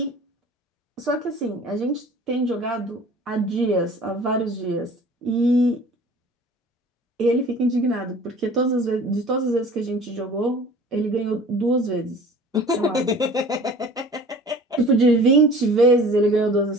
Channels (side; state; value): both; normal; correlation 0.45